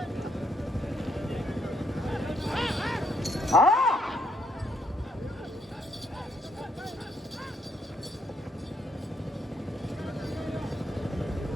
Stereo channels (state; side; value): normal; both; correlation 0.73